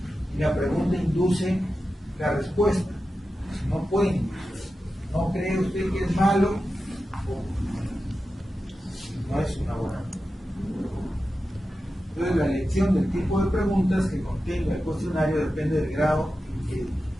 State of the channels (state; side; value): normal; both; correlation 0.92